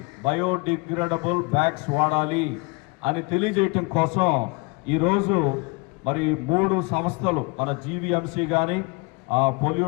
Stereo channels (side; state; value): right; quieter; 29.0 dB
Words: బయోడిగ్రేడబుల్ బ్యాగ్స్ వాడాలి అని తెలియజేయటం కోసం ఈరోజు మరి 3 సంస్థలు మన జీవీఎంసీ కానీ